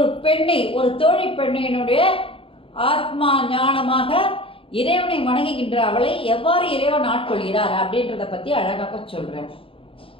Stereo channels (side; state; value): right; late; 0.26 ms